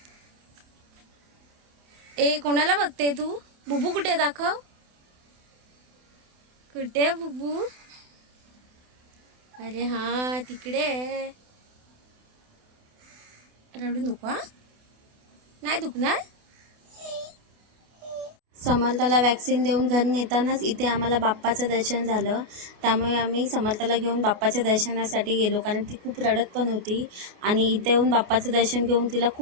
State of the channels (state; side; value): late; left; 28 ms